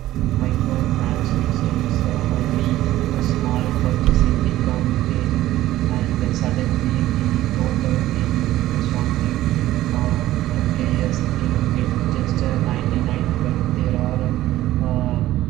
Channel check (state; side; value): quieter; left; 14.9 dB